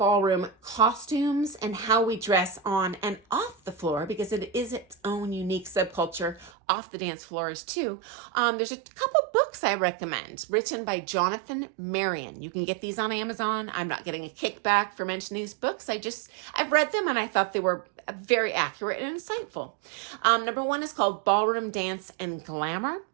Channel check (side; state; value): left; drops out; at 6.5 s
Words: costumes and how we dress on and off the floor, because it is its own unique subculture off the dance floors too. There's a couple books I recommend written by Jonathan Marion. You can get these on Amazon. I'm not getting a kickback for mentioning these books. I've read them and I thought they were very accurate and insightful. Number one is called Ballroom Dance and Glamour,